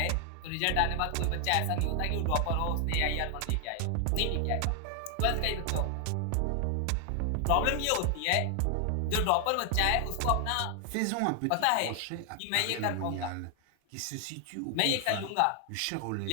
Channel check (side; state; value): both; different; correlation 0.00